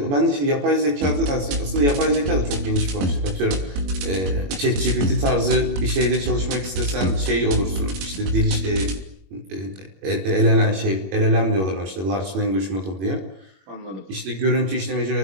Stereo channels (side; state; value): left; late; 21 ms